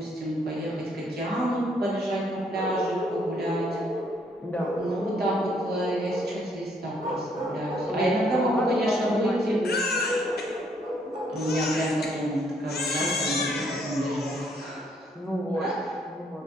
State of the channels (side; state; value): both; normal; correlation 0.68